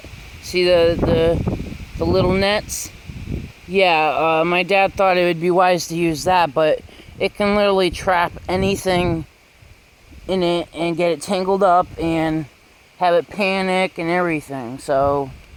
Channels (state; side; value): identical; both; correlation 1.00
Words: See the little nets? Yeah, my dad thought it would be wise to use that, but it can literally trap anything in it and get it tangled up and have it panic and everything. So